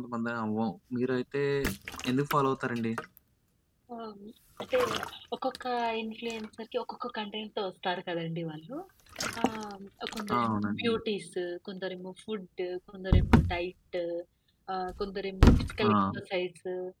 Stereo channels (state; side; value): identical; both; correlation 1.00